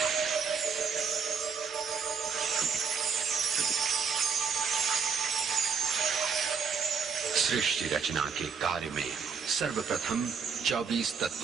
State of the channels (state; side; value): quieter; left; 6.1 dB